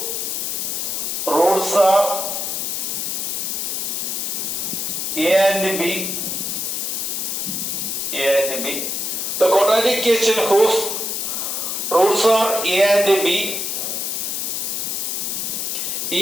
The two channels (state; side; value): noise; left; hiss, 1 dB below the sound